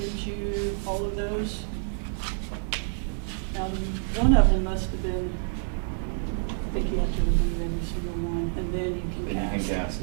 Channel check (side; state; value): left; silent; 59 dB below the other